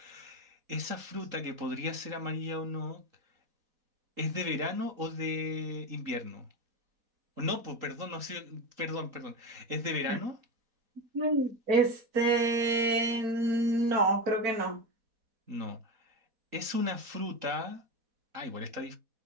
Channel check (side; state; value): left; late; 4.2 ms